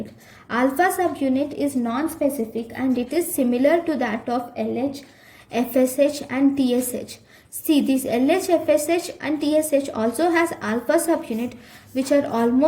Alpha subunit is non-specific and it is similar to that of LH, FSH and TSH. See, this LH, FSH and TSH also has alpha subunit which are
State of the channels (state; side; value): identical; both; correlation 1.00